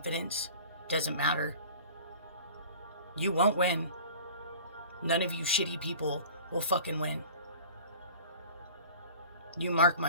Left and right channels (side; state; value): both; inverted; correlation -0.42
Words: doesn't matter. You won't win. None of you shitty people will fucking win. You mark my